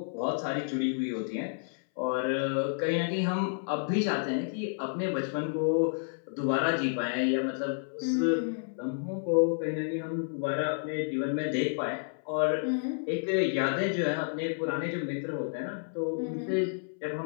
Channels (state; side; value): silent; right; 58 dB below the other